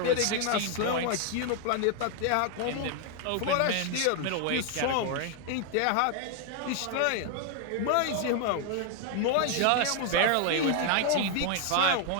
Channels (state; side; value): different; both; correlation 0.00